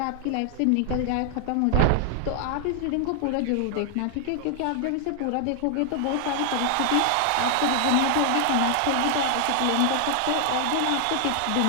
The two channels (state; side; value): different; both; correlation 0.00